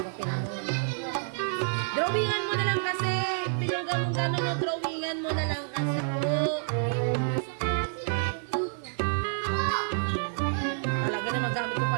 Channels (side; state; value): left; silent; digital silence